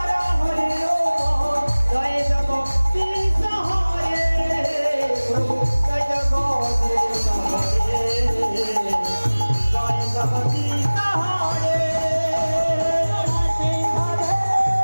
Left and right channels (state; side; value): inverted; both; correlation -1.00